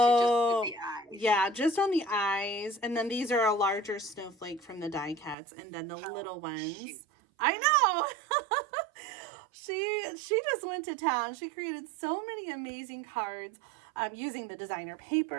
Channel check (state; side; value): drops out; left; at 5.4 s